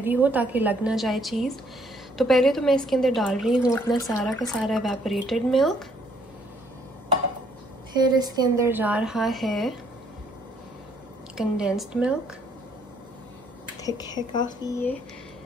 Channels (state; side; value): normal; both; correlation 0.66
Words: हो ताकि लग ना जाए चीज़। तो पहले तो मैं इसके अंदर डाल रही हूँ अपना सारा का सारा एवेपोरेटेड मिल्क। फिर इसके अंदर जा रहा है कंडेंस्ड मिल्क, थिक है काफ़ी ये।